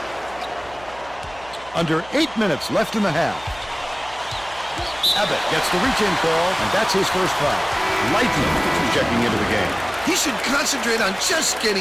Under 8 minutes left in the half. Abbott gets the reach-in call, and that's his first foul. Lightning checking into the game. He should concentrate on just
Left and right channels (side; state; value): right; noise; hum, 22 dB below the sound